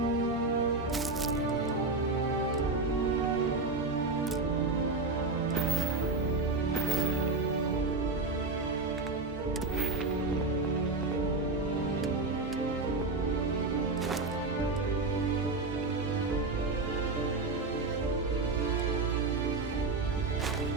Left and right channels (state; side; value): quieter; left; 3.6 dB